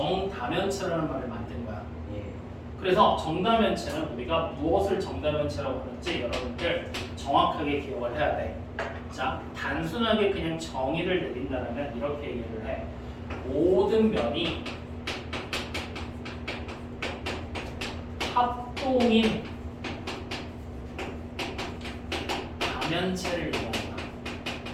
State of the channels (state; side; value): identical; both; correlation 1.00